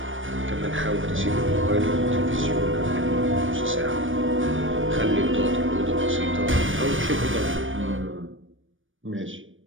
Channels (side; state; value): left; late; 0.57 ms